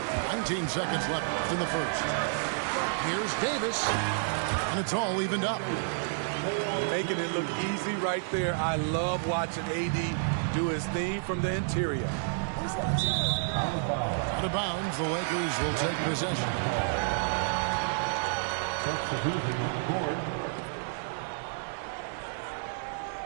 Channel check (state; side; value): silent; left; digital silence